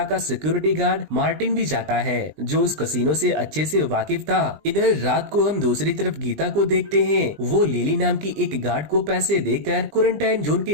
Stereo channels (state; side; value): late; left; 20 ms